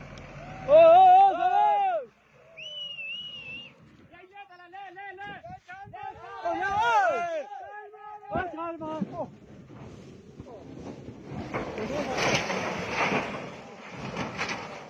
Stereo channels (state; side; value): identical; both; correlation 1.00